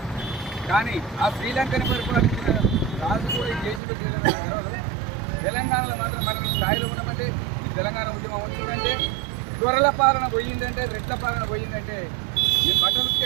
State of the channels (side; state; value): left; drops out; at 3.8 s